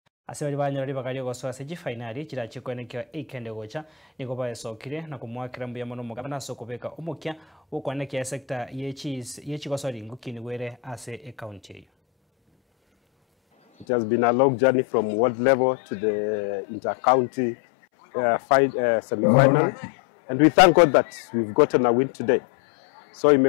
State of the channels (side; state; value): right; drops out; at 13.9 s